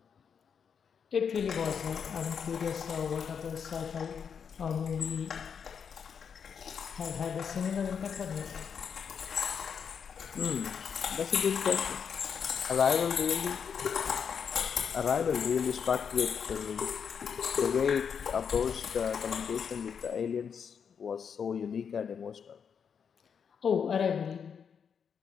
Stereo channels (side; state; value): right; quieter; 7.0 dB